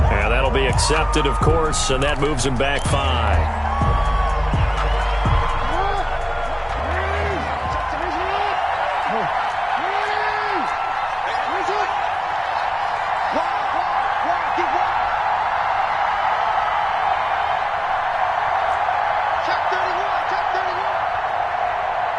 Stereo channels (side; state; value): both; identical; correlation 1.00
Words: And that'll be accepted, of course, and that moves him back 5.